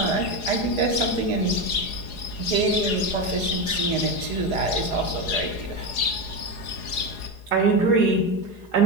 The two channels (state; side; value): late; right; 4.8 ms